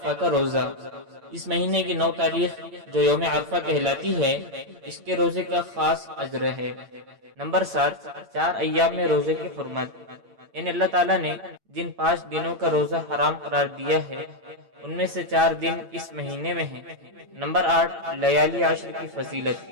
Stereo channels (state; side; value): late; left; 8.8 ms